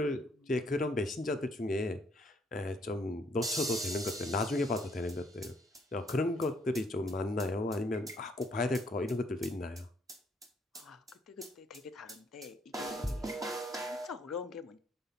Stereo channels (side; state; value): both; normal; correlation 0.68